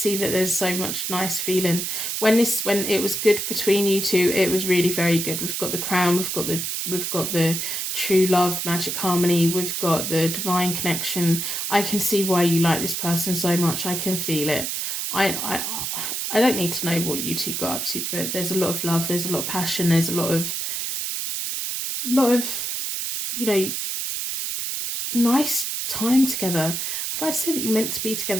that there's so much nice feeling. When it was good between you two, it was really very good. We've got the crown, we've got the true love, magic harmony, we've got the divine connection. I can see why you like this person so much. I can feel it. I don't need to know what you two got up to, but there's a lot of love, there's a lot of passion, there's a lot of you know, nice time together. I like to say that you're meant to be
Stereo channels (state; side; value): noise; right; hiss, 2 dB below the sound